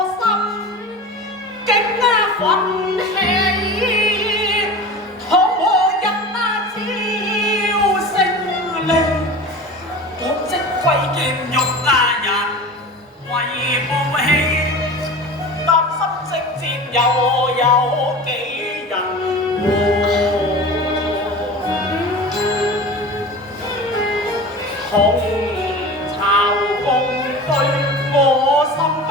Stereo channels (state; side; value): normal; both; correlation 0.34